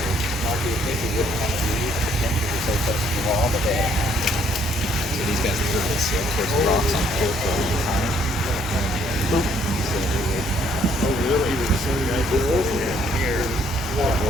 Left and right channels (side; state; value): both; normal; correlation 0.66